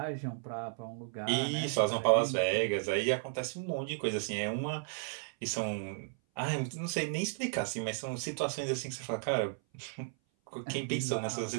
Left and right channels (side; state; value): left; silent; 55 dB below the other